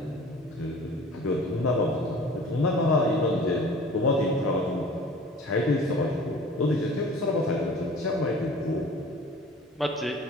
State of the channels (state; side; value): normal; both; correlation 0.44